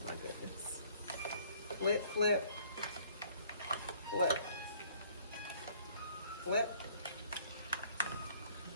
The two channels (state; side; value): inverted; both; correlation -0.60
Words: my goodness. Flip, flip, flip. Flip.